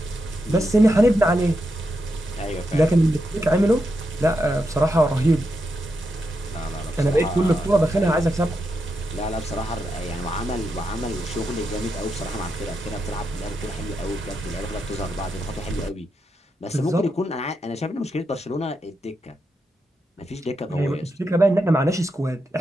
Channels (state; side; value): normal; both; correlation 0.85